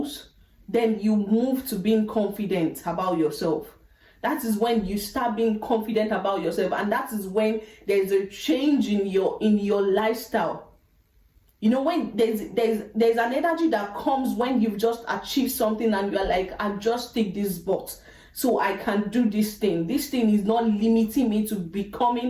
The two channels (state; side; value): identical; both; correlation 1.00